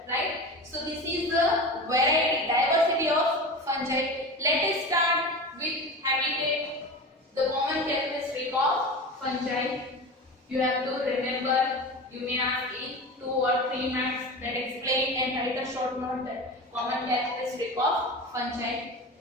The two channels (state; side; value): normal; both; correlation 0.29